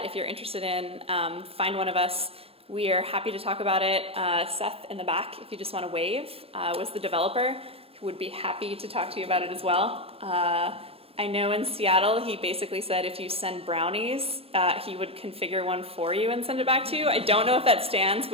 if you're interested in, find one of us. We are happy to talk about it. Seth in the back, if you just want to wave, was the developer who would be happy to talk to you about it as well. I know in Seattle, he basically said if you send brownies, he would configure one for you and send it back to you. I don't know if that stands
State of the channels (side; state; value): left; late; 0.28 ms